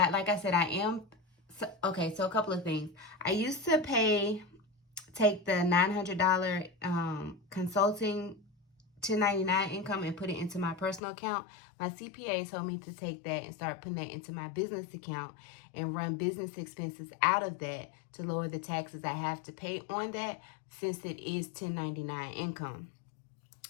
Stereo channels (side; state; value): right; drops out; at 11.0 s